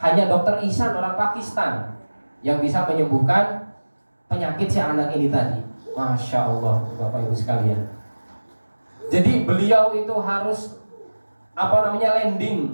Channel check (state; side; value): inverted; both; correlation -1.00